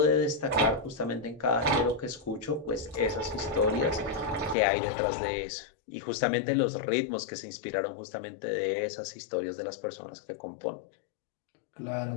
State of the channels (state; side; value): drops out; right; at 4.5 s